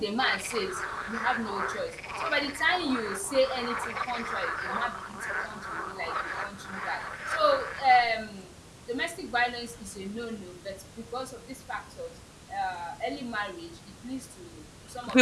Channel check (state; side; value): identical; both; correlation 1.00